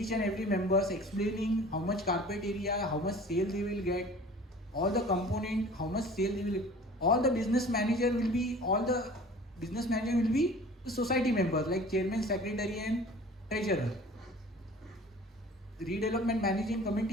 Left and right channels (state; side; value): normal; both; correlation 0.45